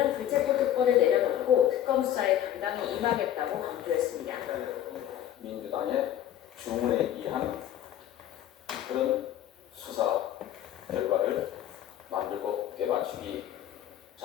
불체포 특권을 내려놓고 특검 수사에 당당히 임하겠다고 강조했습니다. 민주당의 주문에 의한 그런 수사 결과를 만들고 개맞추기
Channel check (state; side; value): quieter; right; 11.4 dB